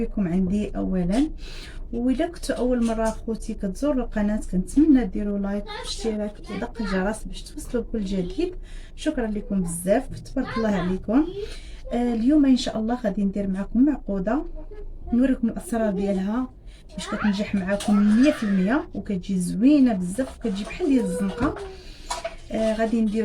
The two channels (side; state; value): both; identical; correlation 1.00